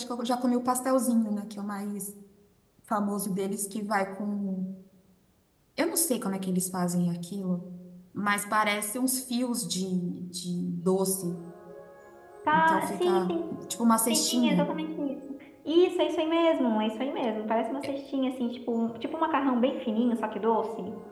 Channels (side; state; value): both; identical; correlation 1.00